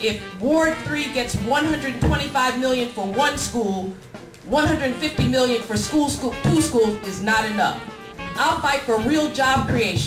Ward 3 gets $125 million for one school, $150 million for two schools is not enough. I'll fight for real job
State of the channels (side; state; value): both; identical; correlation 1.00